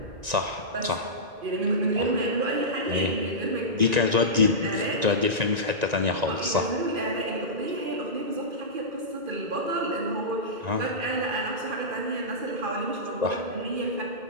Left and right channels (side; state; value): left; late; 1.9 ms